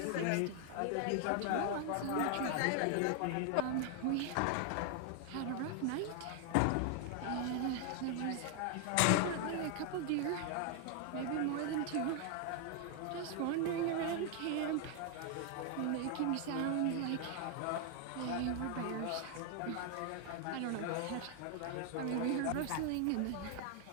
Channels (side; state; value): both; different; correlation 0.00